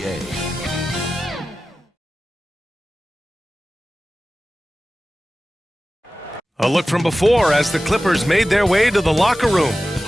A look from before as the Clippers made their way to the locker room,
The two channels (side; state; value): both; normal; correlation 0.95